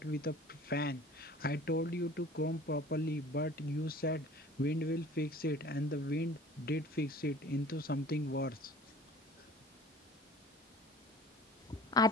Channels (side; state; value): both; normal; correlation 0.45